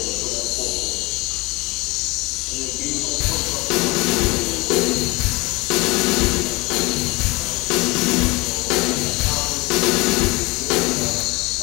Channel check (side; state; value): right; quieter; 23.4 dB